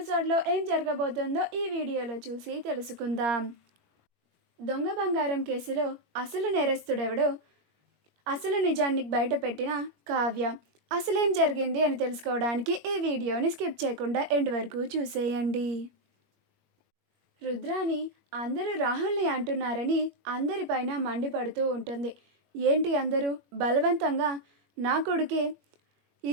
ఏం జరగబోతుందో ఈ వీడియోలో చూసి తెలుసుకుందాం. దొంగ బంగారం కేసులో అసలు నేరస్తుడెవడో, అసలు నిజాన్ని బయట పెట్టిన కావ్య, అసలేం జరిగింది అని తెలుసుకోవడానికి ఈ వీడియోని స్కిప్ చేయకుండా ఎండ్ వరకు చూసేయండి. రుద్రాని అందరూ రాహుల్ని అంటున్నారని అందరిపైన మండిపడుతూ ఉంటుంది. ఏంటి అందరూ బలవంతంగా నా కొడుకే ఈ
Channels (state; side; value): late; left; 21 ms